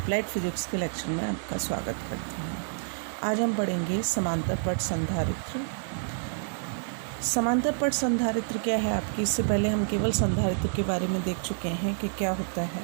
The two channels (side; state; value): left; silent; digital silence